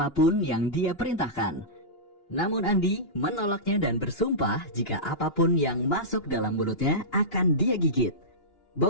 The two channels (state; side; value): late; right; 2.9 ms